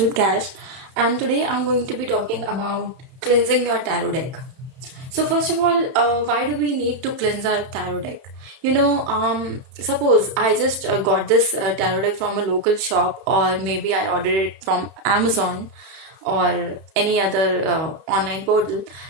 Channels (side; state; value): left; late; 31 ms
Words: Cash, and today I'm going to be talking about cleansing your tarot deck. So first of all, why do we need to cleanse our tarot deck? Suppose I just got this tarot deck from a local shop, or maybe I ordered it from Amazon or any other online portal.